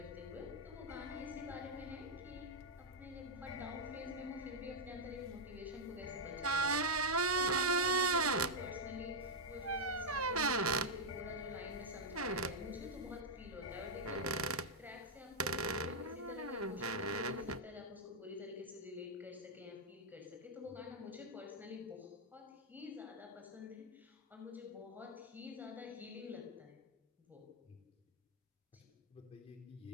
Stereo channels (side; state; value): both; normal; correlation -0.02